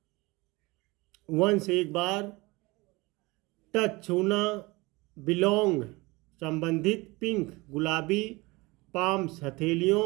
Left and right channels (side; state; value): left; quieter; 23.4 dB